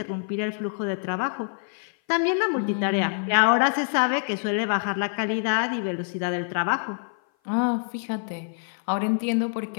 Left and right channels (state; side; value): silent; right; 56 dB below the other